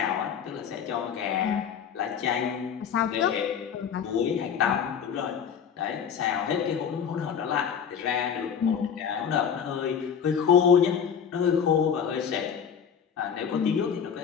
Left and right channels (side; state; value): right; quieter; 7.6 dB